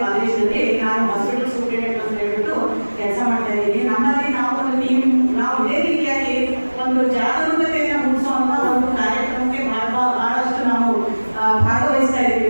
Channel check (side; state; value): both; inverted; correlation -1.00